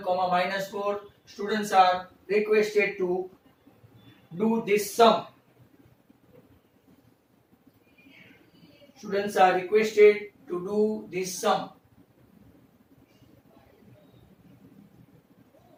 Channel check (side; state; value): both; identical; correlation 1.00